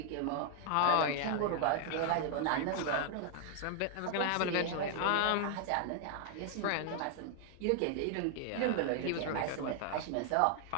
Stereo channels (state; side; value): different; both; correlation 0.00